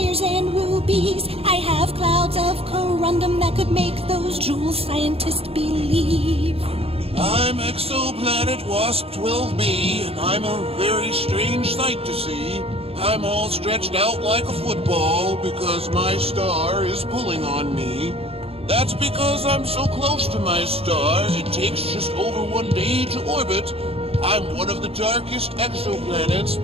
and rubies. I have clouds of corundum that could make those jewel scientists believe. I'm Exoplanet Wasp 12b, and I'm a very strange sight to see. I'm all stretched out like a football because my star is pulling on me. That's because I'm so close to my star, it takes just over 1 day to orbit. I'm one of the darkest exoplanets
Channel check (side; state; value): left; late; 0.28 ms